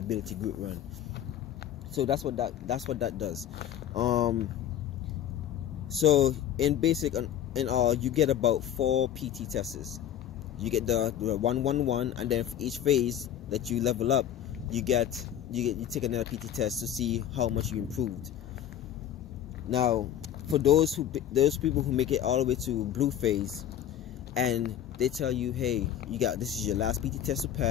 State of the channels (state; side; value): quieter; right; 10.5 dB